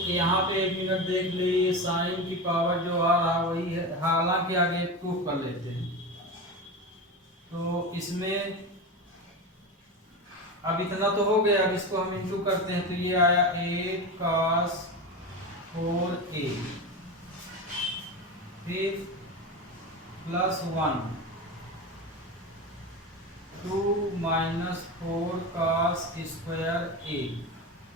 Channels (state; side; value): normal; both; correlation 0.22